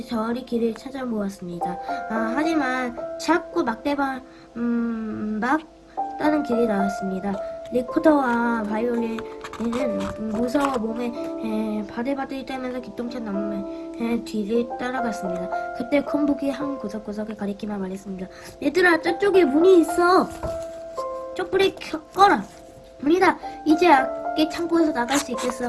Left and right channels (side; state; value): both; identical; correlation 1.00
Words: 길을 찾아보았습니다. 하지만 자꾸 막 다른 길이 나왔습니다. 리코더와 바이올린은 무서워 몸에 바들바들 떨면서 기똥찬 남매의 뒤를 따라갔습니다. 그때 콤북이 한 구석구석을 가리키며 말했습니다. 얘들아, 저쪽에 문이 있어. 촛불을 꺼라. 문이다. 이제 악기 창고에서 나갈 수 있겠어.